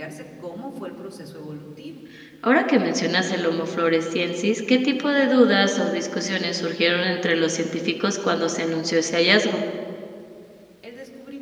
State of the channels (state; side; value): identical; both; correlation 1.00